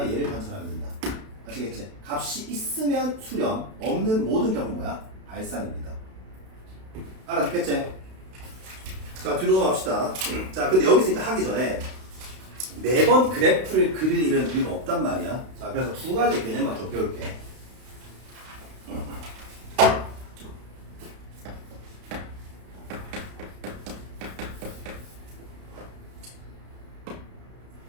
얘를 관찰하면 된다. 아시겠지? 값이 있으면 수렴, 없는 모든 경우 뭐야? 발산입니다. 알아듣겠지? 자, 뒤로 넘어갑시다. 자, 근데 여기서 이제 하기 전에 매번 그래프를 그릴 일은 우리가 없단 말이야. 자, 그래서 두 가지 개념만 좀 배울게.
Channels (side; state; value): left; late; 32 ms